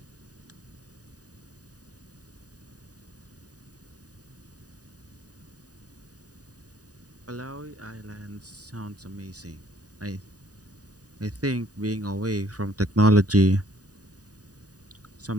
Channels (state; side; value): late; left; 0.68 ms